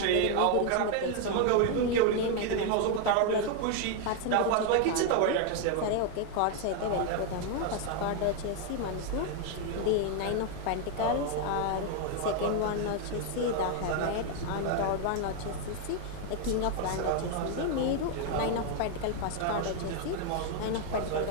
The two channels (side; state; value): both; different; correlation 0.01